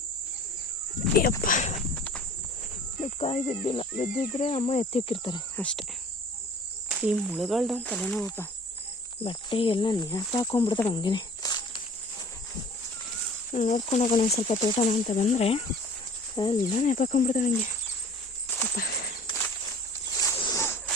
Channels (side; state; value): both; normal; correlation 0.47